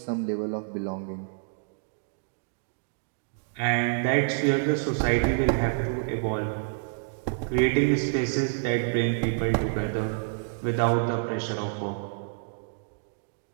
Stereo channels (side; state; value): left; silent; digital silence